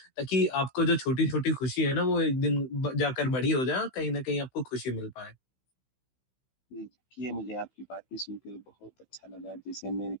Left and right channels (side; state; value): right; late; 16 ms